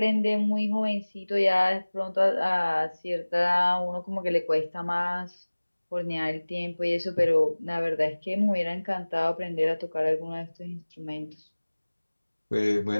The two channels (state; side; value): inverted; both; correlation -1.00